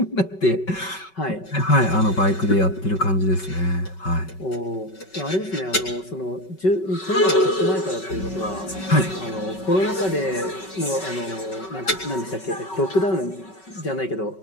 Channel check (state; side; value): late; right; 5.3 ms